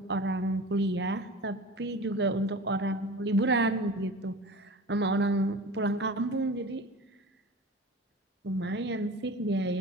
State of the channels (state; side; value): normal; both; correlation 0.36